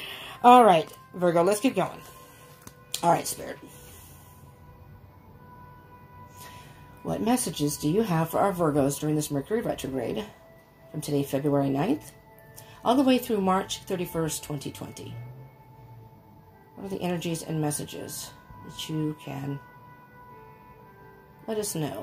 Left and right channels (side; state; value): both; identical; correlation 1.00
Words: All right, Virgo, let's keep going. All right, Spirit. What messages do you have for our Virgos during this Mercury retrograde from today, February 9th, all the way through March 31st, 2020? What are the energies and messages that you can let us